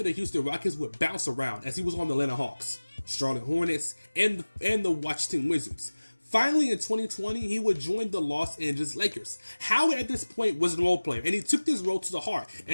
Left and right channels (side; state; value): both; inverted; correlation -1.00